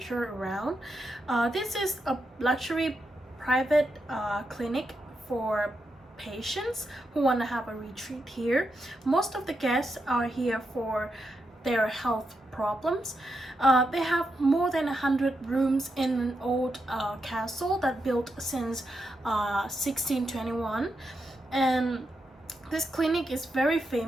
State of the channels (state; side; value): normal; both; correlation 0.85